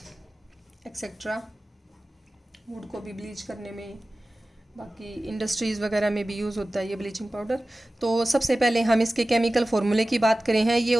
etcetera. Wood को भी ब्लीच करने में, बाकी इंडस्ट्रीज़ वगैरह में भी यूज़ होता है ये ब्लीचिंग पाउडर। तो सबसे पहले हम इसके केमिकल फार्मूले की बात करें हैं। ये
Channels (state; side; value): normal; both; correlation 0.96